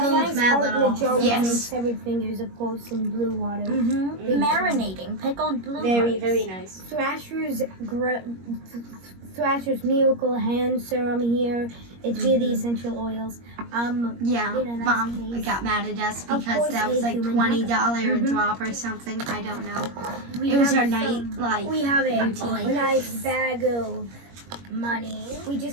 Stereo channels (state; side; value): late; left; 21 ms